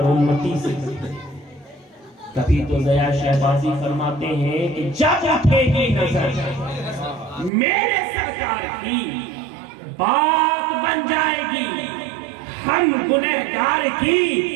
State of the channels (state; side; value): drops out; left; at 7.5 s